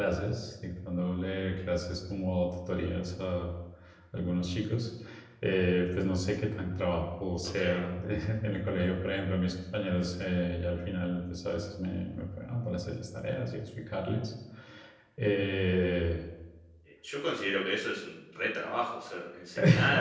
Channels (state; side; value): identical; both; correlation 1.00